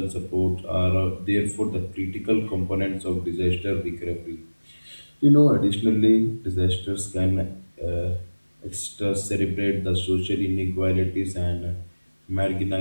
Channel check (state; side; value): inverted; both; correlation -1.00